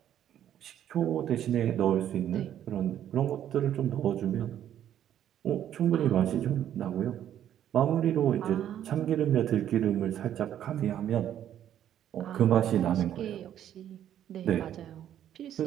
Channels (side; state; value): left; quieter; 10.7 dB